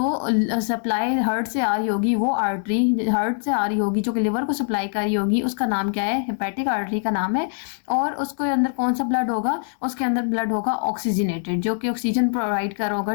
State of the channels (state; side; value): silent; right; digital silence